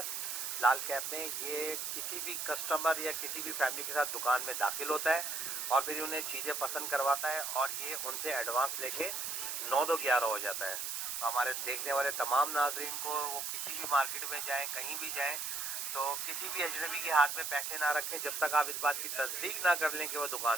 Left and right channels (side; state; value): right; noise; hiss, 3 dB below the sound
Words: लाल कैप में, ये किसी भी कस्टमर या किसी भी फैमिली के साथ दुकान में दाखिल होता है और फिर उन्हें चीज़ें पसंद करवाता है और ये उनसे एडवांस लेके 9 दो 11 हो जाता है। तो हमारे देखने वाले तमाम नाज़रीन को वो किसी भी मार्केट में जाएँ, कहीं भी जाएँ, तो किसी भी अजनबी के हाथ में पैसे ना रखें जब तक आप इस बात की तस्दीक ना कर लें कि वो